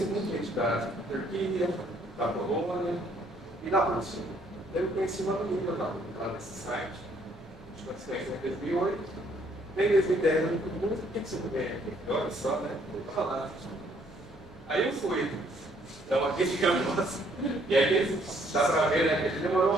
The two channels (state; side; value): normal; both; correlation 0.65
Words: muita gente da Turquia, da Polônia e da Rússia. Daí eu conheci uma menina lá nesse site, a gente se conheceu em 2008, em 2010 eu me perguntei, por que você não vem aqui? Olha só, né? Vou falar. Aí eu fui. Então aqui ficamos. E aí dá para ver, né? Que ele